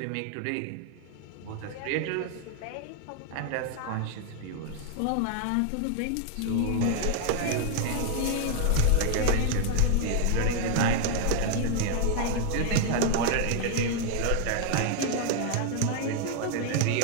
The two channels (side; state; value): both; different; correlation 0.00